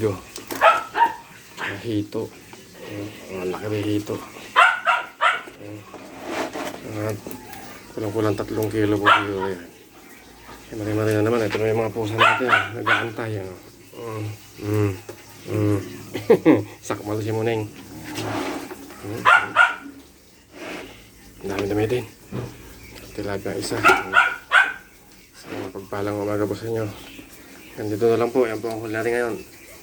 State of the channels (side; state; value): both; identical; correlation 1.00